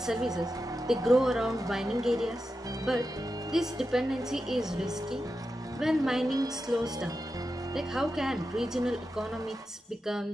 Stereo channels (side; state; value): both; normal; correlation 0.90